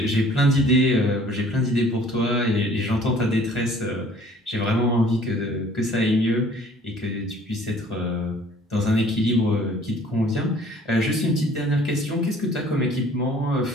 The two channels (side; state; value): both; normal; correlation 0.54